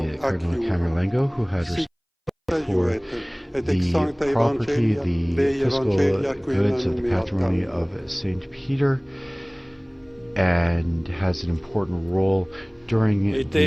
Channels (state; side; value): identical; both; correlation 1.00